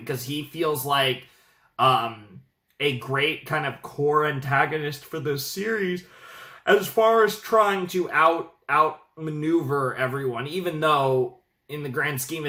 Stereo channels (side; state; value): both; identical; correlation 1.00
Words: he feels like a great kind of core antagonist for this series as far as trying to outmaneuver everyone, even though in the grand scheme